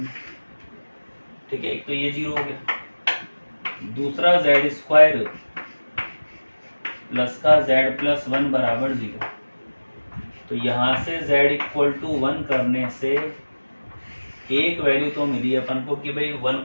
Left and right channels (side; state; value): both; inverted; correlation -1.00